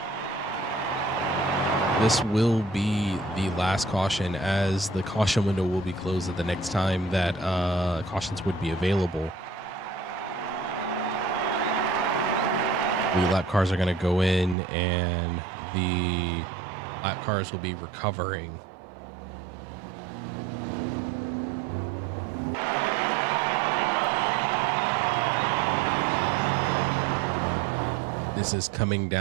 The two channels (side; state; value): left; drops out; at 14.6 s